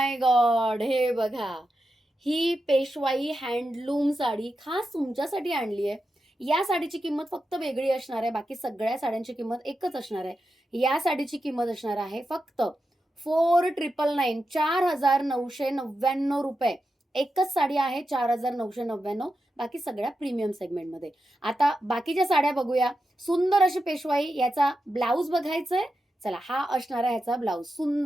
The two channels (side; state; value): both; normal; correlation 0.89